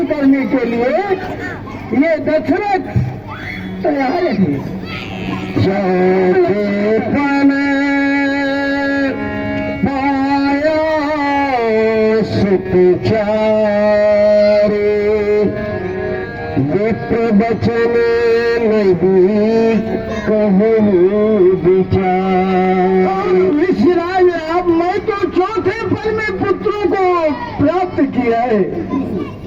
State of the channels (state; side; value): identical; both; correlation 1.00